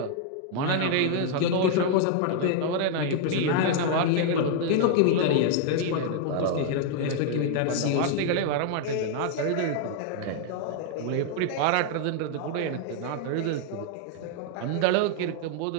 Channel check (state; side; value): different; both; correlation 0.00